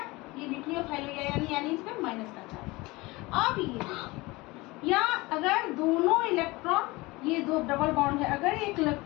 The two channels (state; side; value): quieter; right; 22.3 dB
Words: ये न्यूक्लियोफाइल हो गया, यानी इस पे माइनस का चार्ज। अब ये या अगर दोनों इलेक्ट्रॉन, ये दो डबल बॉन्ड है, अगर एक